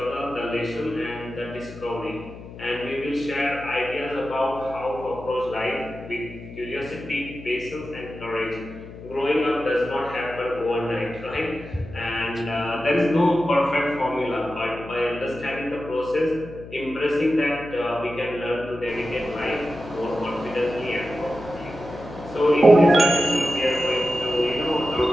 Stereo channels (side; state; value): left; noise; hum, 14 dB below the sound